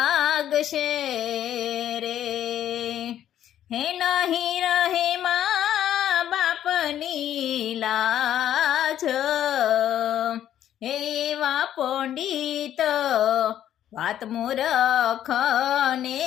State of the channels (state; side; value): quieter; right; 11.1 dB